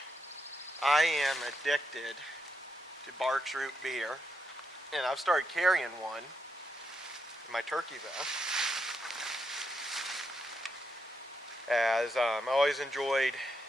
I am addicted to Barks Root beer, and I've started carrying one in my turkey vest. As I always enjoyed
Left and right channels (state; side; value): normal; both; correlation 0.82